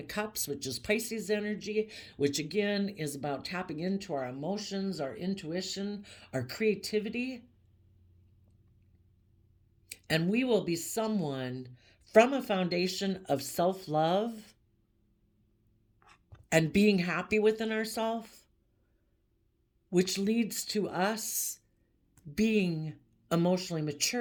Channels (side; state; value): both; identical; correlation 1.00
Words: of Cups, which is Pisces energy, which again is about tapping into our emotions, our intuition, our creativity. And we will be someone from a foundation of self-love and being happy within ourselves, which leads to us being emotionally